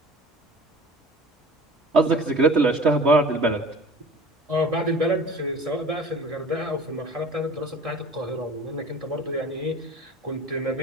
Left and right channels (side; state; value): both; normal; correlation 0.44